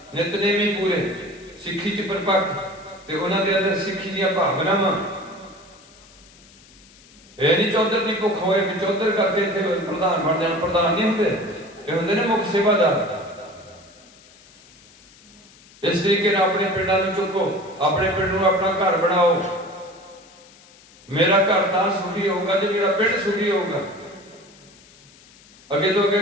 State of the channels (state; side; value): noise; left; hiss, 25 dB below the sound